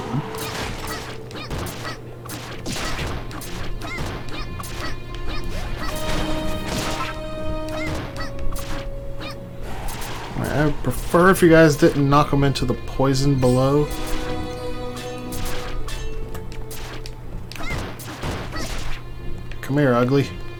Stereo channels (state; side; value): identical; both; correlation 1.00